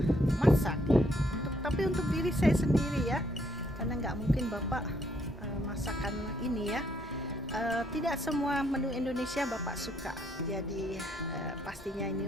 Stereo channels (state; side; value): normal; both; correlation 0.71